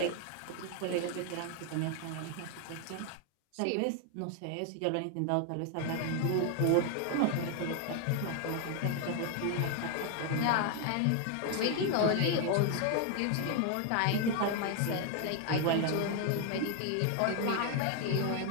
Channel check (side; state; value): both; different; correlation 0.01